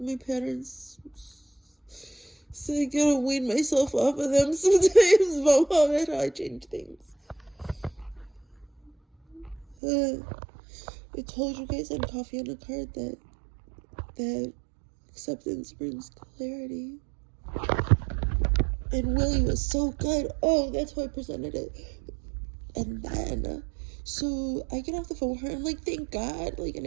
patterns. So I gotta wean myself off of them sometimes. Vamos a ver how I change things. I told you guys on Coffee on a Card that acceptance brings clarity. And Willie was so good. Oh, that's how I presented it. And then, so I get off the phone with her, and I'm like, thank God, like, and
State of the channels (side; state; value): left; drops out; at 9.8 s